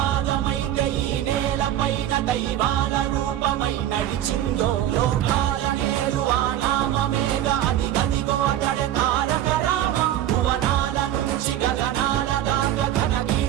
ఈ నేల పైన దైవాల రూపమై నడిచిందో, లోకాల నేడు ఆ నామమేగా అది గదిగో అతడే తారక రామం. భువనాల నుంచి గగనాల దాకా ఘన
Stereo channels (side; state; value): left; quieter; 12.0 dB